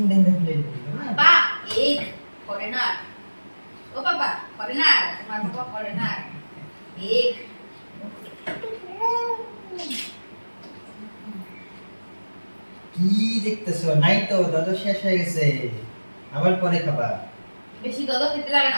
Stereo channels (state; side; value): inverted; both; correlation -1.00